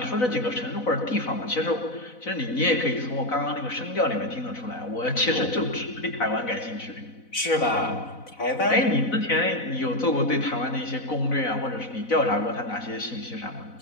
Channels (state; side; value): late; right; 4.0 ms